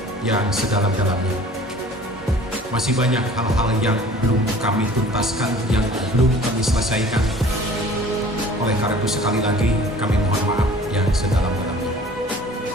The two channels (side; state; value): both; normal; correlation 0.48